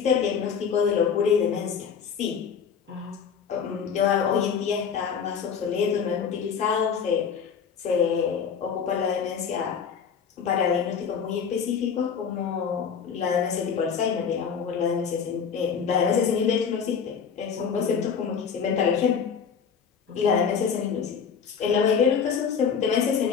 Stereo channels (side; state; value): right; quieter; 6.8 dB